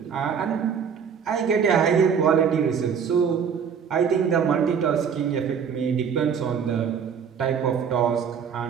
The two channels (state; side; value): quieter; left; 7.0 dB